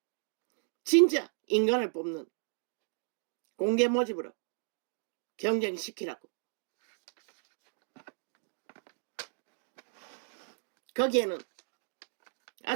진짜 인간을 뽑는 공개 모집으로 경쟁시키라고. 거기에는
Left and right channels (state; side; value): silent; left; digital silence